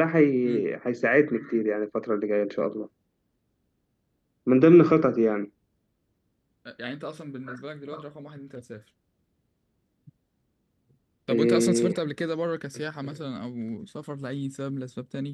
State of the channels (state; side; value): identical; both; correlation 1.00